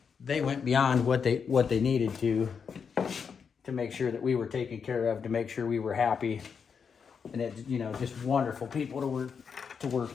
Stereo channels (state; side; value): quieter; right; 6.3 dB